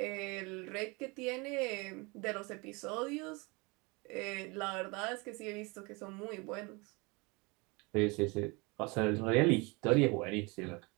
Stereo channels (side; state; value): left; quieter; 27.5 dB